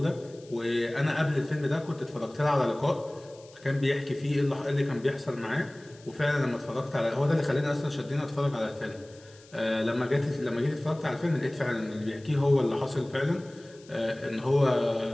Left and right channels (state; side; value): noise; left; hiss, 25 dB below the sound